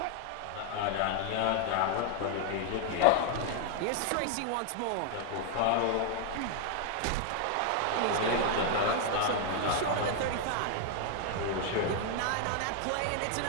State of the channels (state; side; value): different; both; correlation 0.01